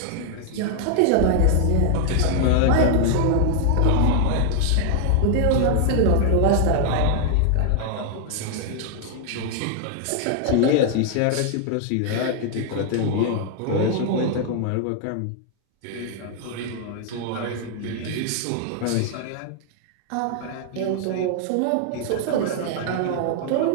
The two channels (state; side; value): different; both; correlation 0.00